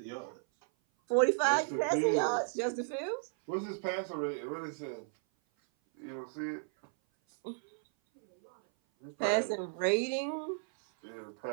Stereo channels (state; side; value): silent; left; 55 dB below the other